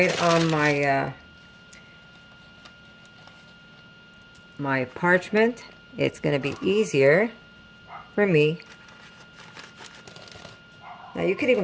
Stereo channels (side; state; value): both; identical; correlation 1.00